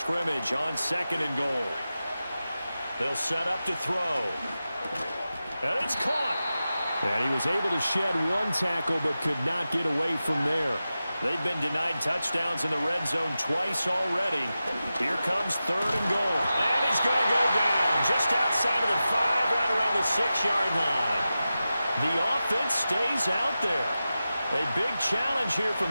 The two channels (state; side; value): inverted; both; correlation -0.93